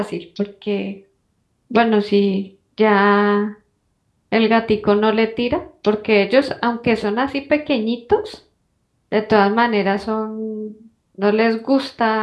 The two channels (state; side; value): identical; both; correlation 1.00